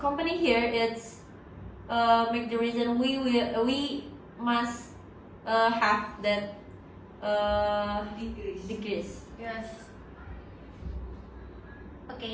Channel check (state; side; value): identical; both; correlation 1.00